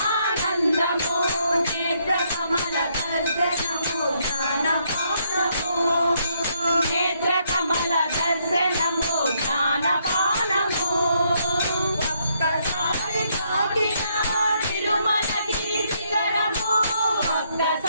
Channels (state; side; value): inverted; both; correlation -0.73